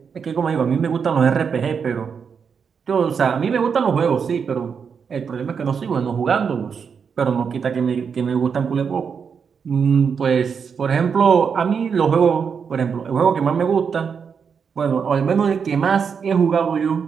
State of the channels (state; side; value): quieter; left; 6.4 dB